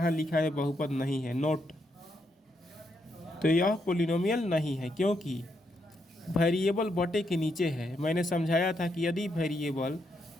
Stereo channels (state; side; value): normal; both; correlation 0.79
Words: लिखा है बहुपद नहीं है, नोट। तो यह पोलिनोमियल नहीं है, क्योंकि वेरिएबल बटे के नीचे है। मैंने समझाया था कि यदि वेरिएबल